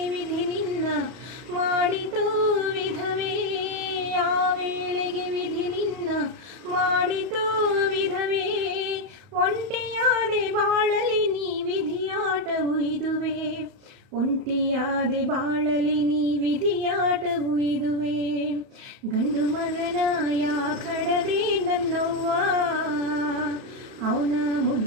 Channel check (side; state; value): left; late; 31 ms